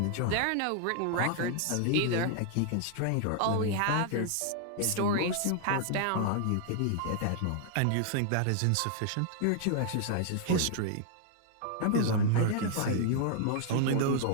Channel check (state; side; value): different; both; correlation 0.00